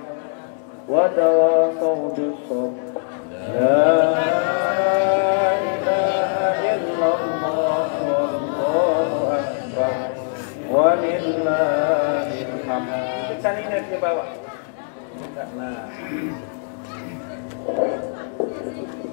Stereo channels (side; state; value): right; silent; digital silence